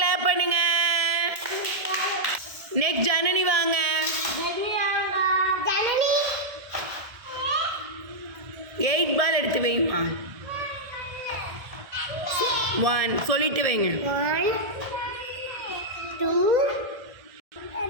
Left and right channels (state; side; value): late; left; 1.7 ms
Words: பண்ணுங்க. நெக்ஸ்ட் ஜனனி வாங்க. 8 பால் எடுத்து வைமா. 1 சொல்லிட்டு வைங்க.